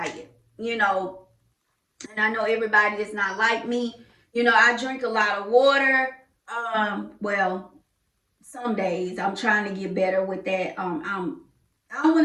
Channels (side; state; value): both; identical; correlation 1.00